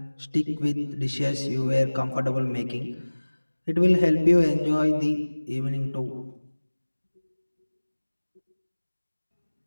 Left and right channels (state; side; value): inverted; both; correlation -1.00